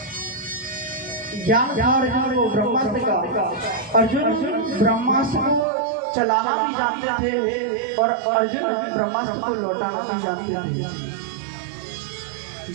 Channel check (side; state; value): left; drops out; at 5.7 s